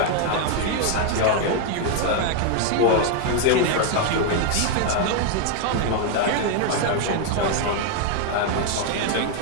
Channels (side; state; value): both; different; correlation 0.01